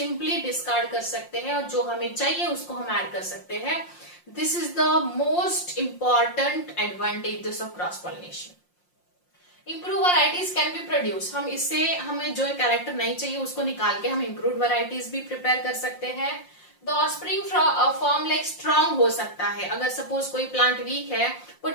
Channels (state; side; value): late; right; 5.6 ms